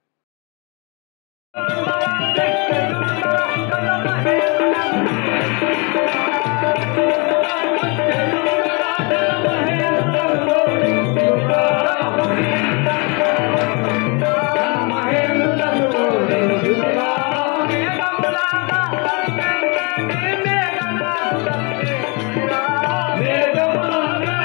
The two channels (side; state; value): right; quieter; 31.7 dB